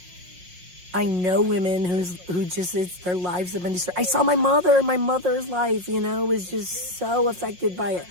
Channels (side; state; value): left; late; 5.6 ms